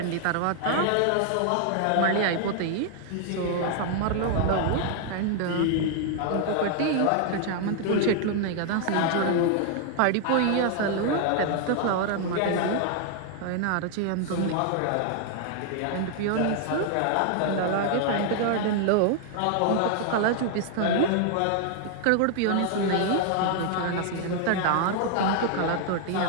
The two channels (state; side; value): different; both; correlation 0.00